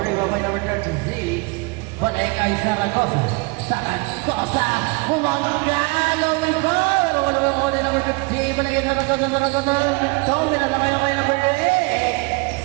by number 36. Balik kay Zaragoza. Zaragoza, kumangalo ng ball. Wala ba ako din number 15. Baligyan na Zaragoza. Tawin na lang kayo kay number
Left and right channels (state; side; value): quieter; left; 28.3 dB